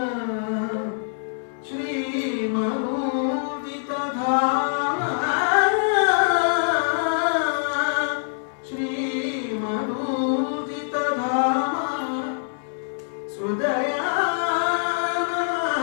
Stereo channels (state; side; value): silent; right; 62 dB below the other